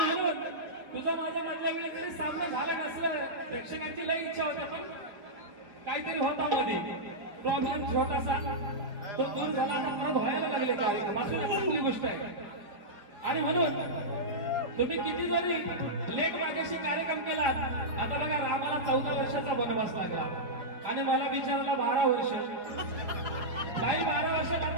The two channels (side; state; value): left; late; 4.6 ms